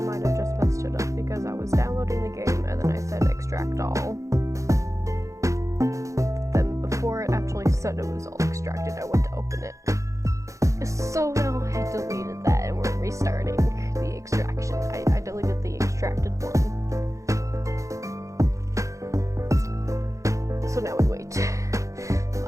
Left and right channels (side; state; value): left; late; 0.15 ms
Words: have just messed it up because I was downloading the game and then I said extract all. Then before it actually said it was all extracted, I went to open it. So now I deleted that and we're restarting the extraction. I deleted the extracted one. So now we wait.